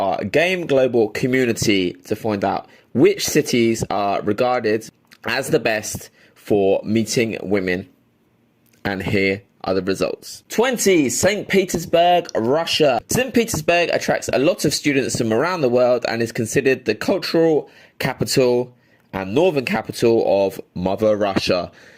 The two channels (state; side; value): identical; both; correlation 1.00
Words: Game Global community to find out which cities are regarded as the best for meeting women. And here are the results. 20. St. Petersburg, Russia. St. Petersburg attracts a lot of students from around the world and is considered the cultural capital and northern capital of Mother Russia.